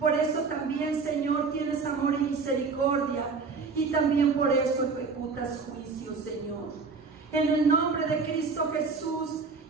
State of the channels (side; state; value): left; quieter; 4.7 dB